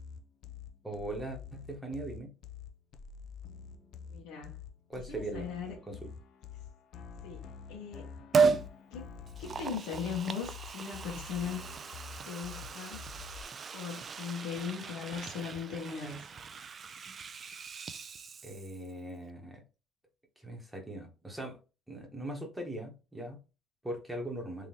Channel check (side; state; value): both; normal; correlation 0.66